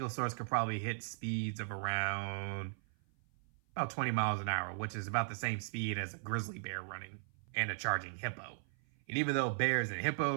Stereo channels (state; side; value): silent; left; 53 dB below the other